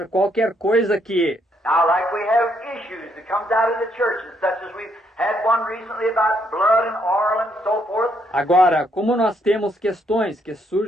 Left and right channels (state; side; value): normal; both; correlation 0.73